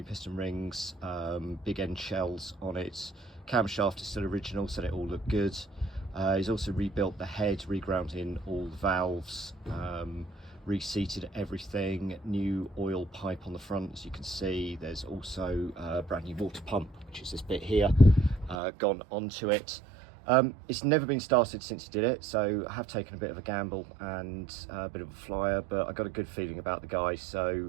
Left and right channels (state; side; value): drops out; left; at 18.6 s